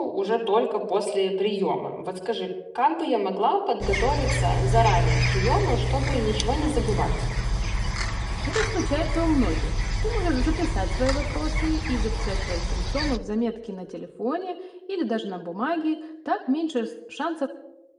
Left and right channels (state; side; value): identical; both; correlation 1.00